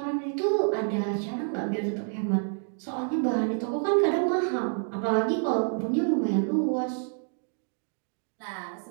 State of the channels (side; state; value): left; silent; 56 dB below the other